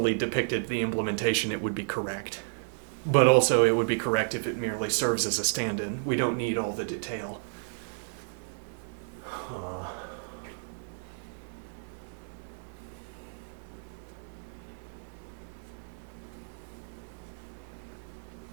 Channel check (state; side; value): silent; left; 57 dB below the other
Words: depicted the implementation, it would be correct. But also it would be correct if it merely serves as a stand-in. We don't need all the detail.